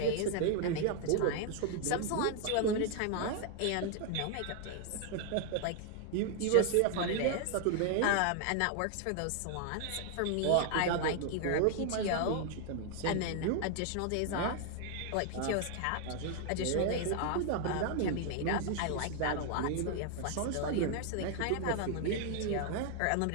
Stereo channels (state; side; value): different; both; correlation 0.00